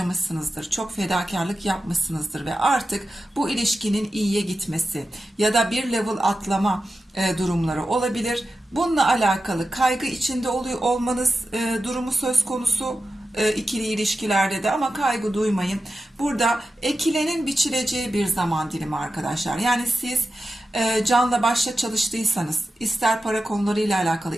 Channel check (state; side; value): normal; both; correlation 0.92